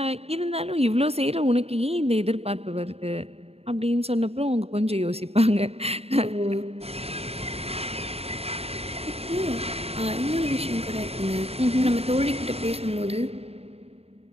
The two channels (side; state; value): left; late; 0.29 ms